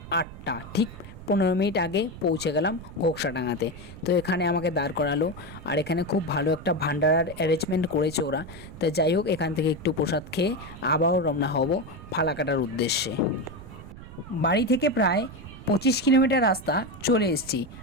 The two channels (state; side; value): noise; right; rumble, 15 dB below the sound